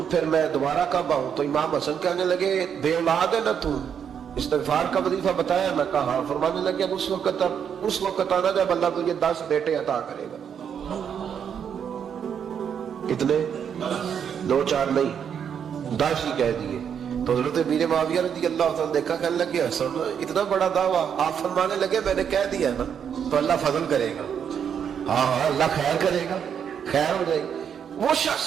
پھر میں دوبارہ کب آؤں؟ تو امام حسن کہنے لگے بے اولاد ہے نا تو، استغفار کا وظیفہ بتایا؟ میں کہا ہاں۔ فرمانے لگے اب اس وقت آنا جب اللہ تجھے 10 بیٹے عطا کرے گا۔ کتنے؟ 2 4 نہیں، 10 ہی کہہ دیے۔ تو حضرت امیر معاویہ رضی اللہ عنہ دیکھا، کہنے لگے حسن اتنا بڑا دعویٰ؟ آپ فرمانے لگے میں نے کہہ دیا نا تو اللہ فضل کرے گا، ہاں ہاں اللہ خیر کرے گا، خیر ہو جائے گی۔ وہ شخص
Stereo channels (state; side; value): quieter; left; 7.9 dB